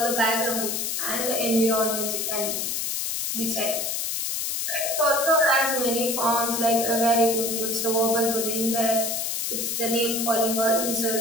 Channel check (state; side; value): noise; left; hiss, 1 dB below the sound